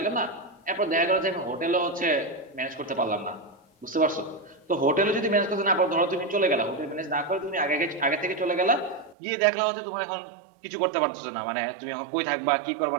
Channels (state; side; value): drops out; left; at 9.2 s